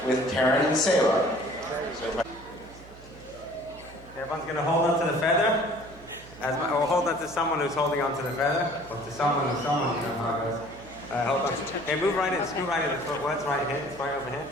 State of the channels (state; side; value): noise; right; hum, 20 dB below the sound